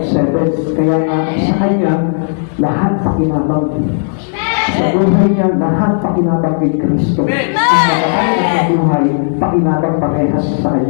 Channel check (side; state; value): right; silent; digital silence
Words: seven. Kaya nga, sa Kanya, lahat pakinabang. Sa buhay niya, lahat pakinabang kay Kristo. Ang nakakain at sa buhay, pakinabang parehas sa